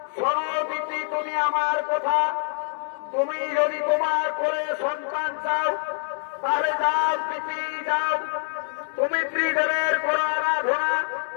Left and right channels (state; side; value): silent; right; 62 dB below the other